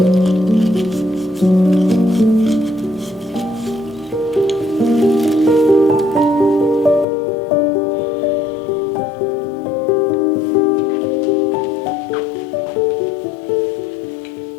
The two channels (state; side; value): drops out; right; at 7.1 s